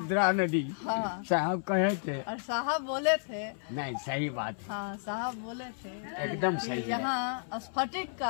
नदी। हाँ। साहब कहे थे। और साहब बोले थे। नहीं, सही बात है। हाँ, साहब बोले थे एकदम सही है। यहाँ स्फटिक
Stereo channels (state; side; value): silent; right; 57 dB below the other